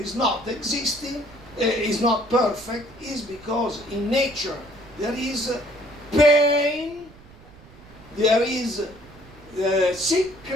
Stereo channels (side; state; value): right; noise; rumble, 22 dB below the sound